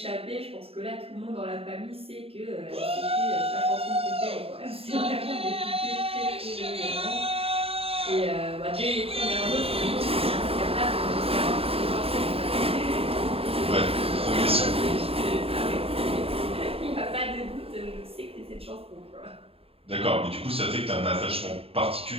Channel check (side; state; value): left; late; 0.28 ms